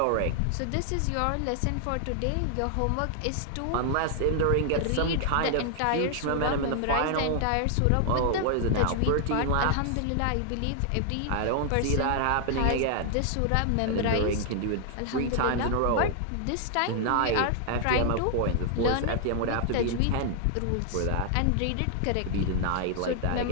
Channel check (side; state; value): both; different; correlation 0.00